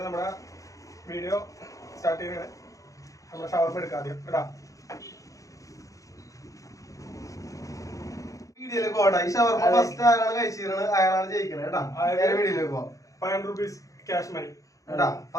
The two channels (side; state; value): right; late; 0.16 ms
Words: നമ്മുടെ വീഡിയോ സ്റ്റാർട്ട് ചെയ്യണേ. നമ്മുടെ ഷവർമ എടുക്കാം ആദ്യം കേട്ടാ. വീഡിയോയിലേക്ക് പോകട്ടെ. ഈ ഷവർമ ഫസ്റ്റ് ആരാണ് കഴിച്ചിരുന്നത് അയാളാണ് ജയിക്കുന്നത് കേട്ടാ. വീഡിയോയിലേക്ക് പോവാം. 500 rupees ക്യാഷ് മണി കേട്ടാ.